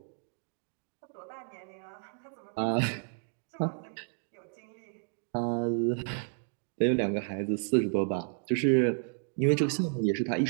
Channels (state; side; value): silent; left; 56 dB below the other